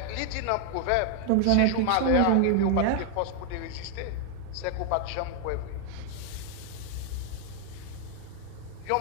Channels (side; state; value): both; different; correlation 0.00